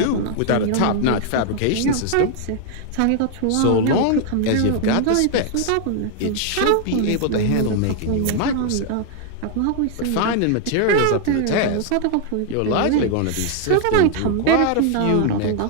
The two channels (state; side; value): different; both; correlation 0.00